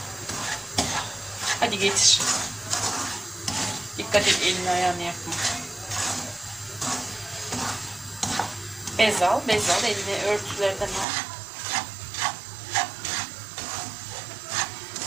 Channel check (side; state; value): left; drops out; at 11.1 s